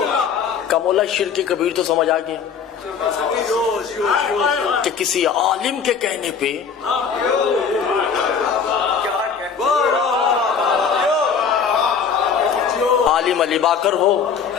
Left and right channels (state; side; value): quieter; right; 6.5 dB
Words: का मौला शिर्क कबीर तो समझ आ गया कि किसी आलिम के कहने पे आलिम अली बाकर हो